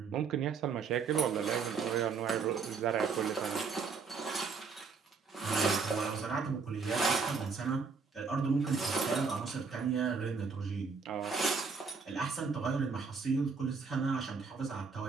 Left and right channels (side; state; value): left; quieter; 5.1 dB